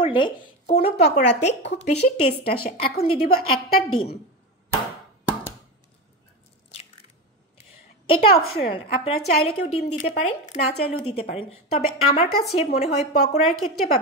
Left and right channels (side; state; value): both; normal; correlation 0.19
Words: কোনো পকোড়াতে খুব বেশি টেস্ট আসে। এখন দিয়ে দিব একটা ডিম। এটা অপশনাল, আপনারা চাইলে কেউ ডিম দিতে পারেন, না চাইলেও দিতে পারেন। তবে আমার কাছে মনে হয় পকোড়ার ক্ষেত্রে বা